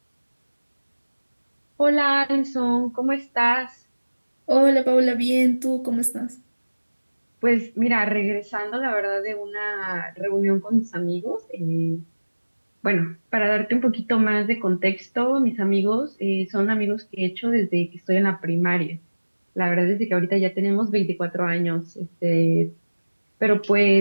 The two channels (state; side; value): inverted; both; correlation -1.00